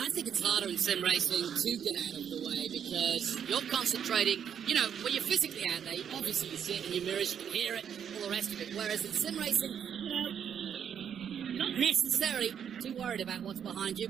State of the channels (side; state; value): left; quieter; 8.3 dB